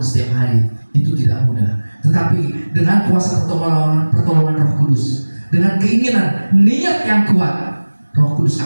setiap hari. Itu tidak mudah. Tetapi dengan kuasa pertolongan Roh Kudus, dengan keinginan, niat yang kuat, Roh Kudus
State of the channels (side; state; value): both; inverted; correlation -1.00